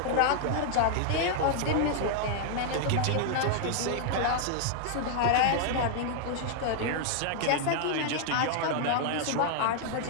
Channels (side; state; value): both; different; correlation -0.01